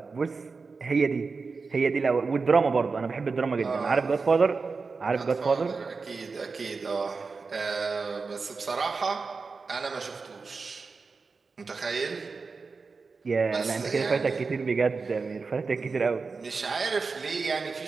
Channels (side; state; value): left; quieter; 4.5 dB